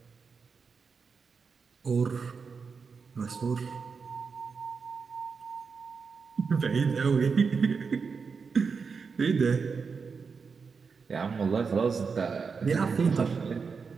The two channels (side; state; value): left; quieter; 5.3 dB